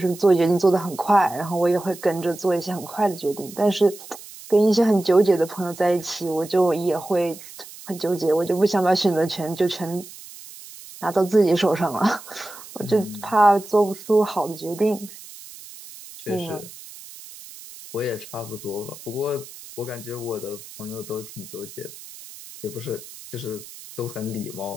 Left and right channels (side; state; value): right; noise; hiss, 17 dB below the sound